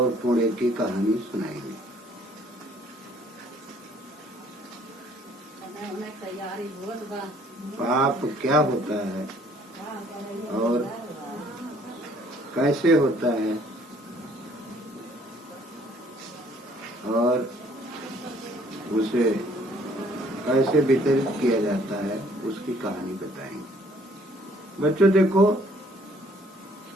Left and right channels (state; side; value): normal; both; correlation 0.60